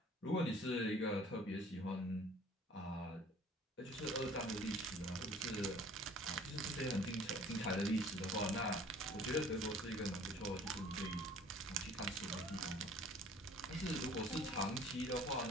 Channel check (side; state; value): both; normal; correlation 0.51